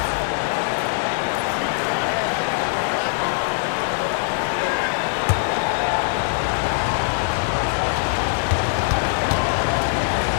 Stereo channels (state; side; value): silent; right; 63 dB below the other